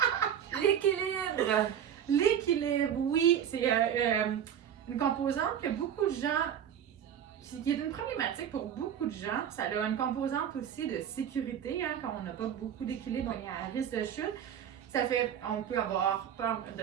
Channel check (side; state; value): left; quieter; 9.2 dB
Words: L'équilibre! L'équilibre, oui, c'est une composante que beaucoup de gens, qui est une problématique pour beaucoup de gens. Ça a une composante aussi de sécurité, hein, quand on n'a pas beaucoup d'équilibre, on est à risque de chute. Ça fait, on peut avoir peur de